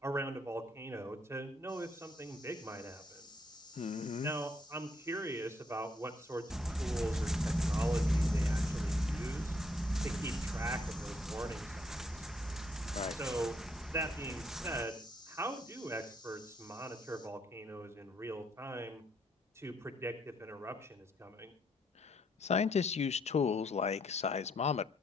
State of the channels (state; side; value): normal; both; correlation 0.71